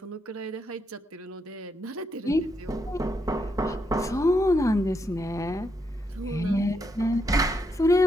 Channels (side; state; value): both; normal; correlation 0.79